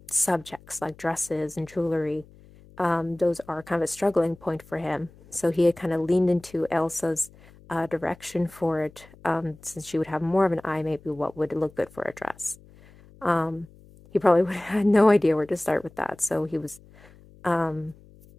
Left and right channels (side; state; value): left; noise; hum, 24 dB below the sound